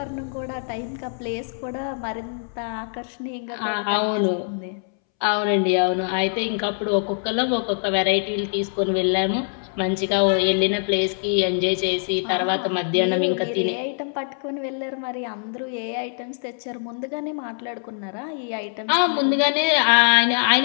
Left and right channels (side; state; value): right; silent; 63 dB below the other